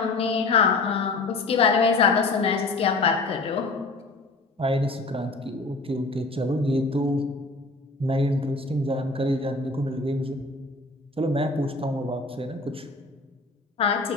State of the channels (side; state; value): right; quieter; 3.3 dB